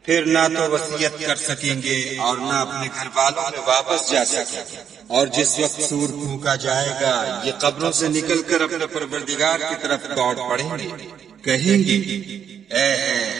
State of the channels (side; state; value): left; quieter; 8.2 dB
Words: پھر نہ تو وصیت کر سکیں گے اور نہ اپنے گھر والوں میں واپس جا سکیں گے۔ اور جس وقت سور پھونکا جائے گا یہ قبروں سے نکل کر اپنے پروردگار کی طرف دوڑ پڑیں گے، کہیں گے اے